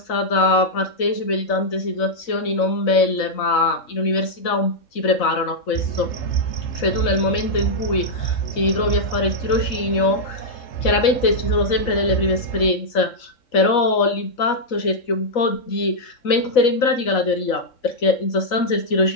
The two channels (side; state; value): right; late; 4.0 ms